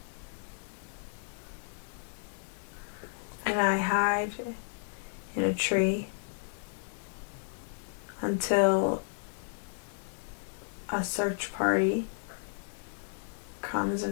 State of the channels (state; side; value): silent; right; digital silence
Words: And I hide in a tree until a search party comes